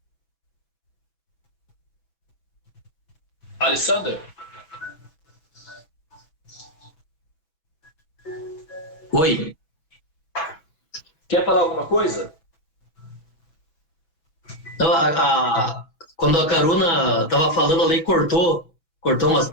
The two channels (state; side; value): late; right; 6.1 ms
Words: Alexander? Oi. Quer falar alguma coisa? Então, quando a Karuna estava falando, a Lei cortou umas